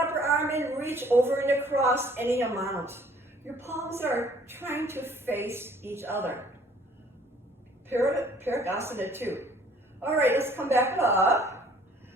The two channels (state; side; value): normal; both; correlation 0.57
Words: arm and reach over and across any amount. Your palms are trying to face each other. Parigasana 2. All right, let's come back up.